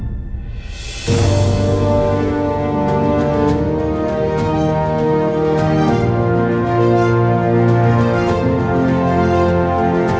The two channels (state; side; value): identical; both; correlation 1.00